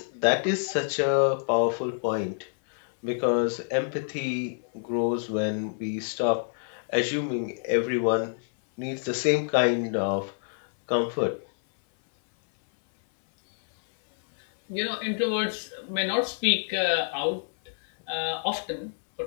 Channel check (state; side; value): silent; right; 60 dB below the other